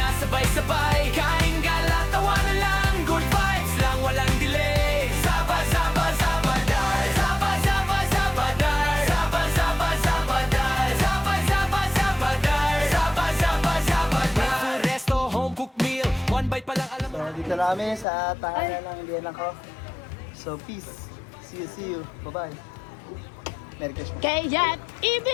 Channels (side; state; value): right; drops out; at 18.1 s